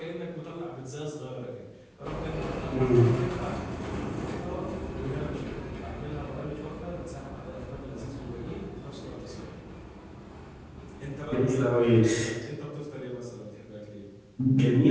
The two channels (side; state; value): both; identical; correlation 1.00